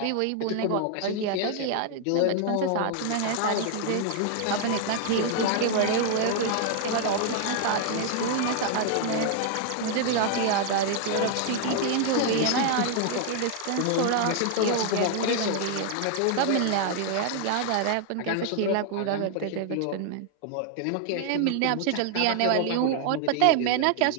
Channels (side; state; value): both; different; correlation 0.00